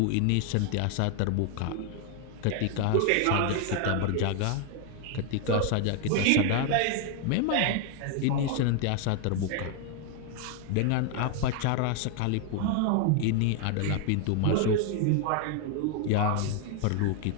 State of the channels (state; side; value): different; both; correlation 0.00